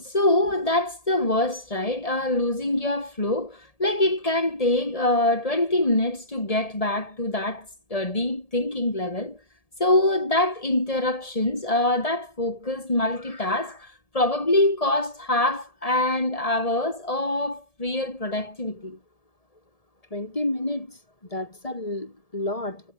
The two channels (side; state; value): right; late; 1.7 ms